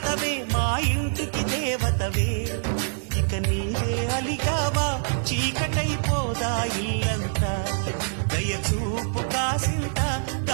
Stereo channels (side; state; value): left; silent; 62 dB below the other